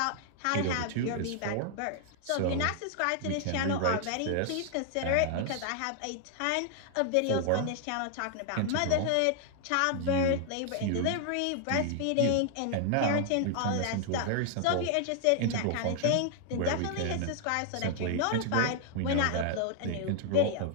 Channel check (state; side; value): different; both; correlation 0.00